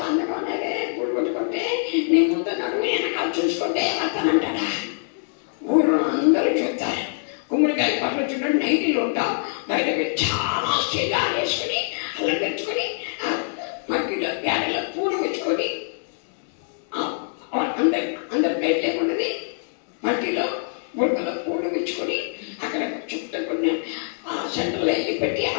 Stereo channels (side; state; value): right; silent; 62 dB below the other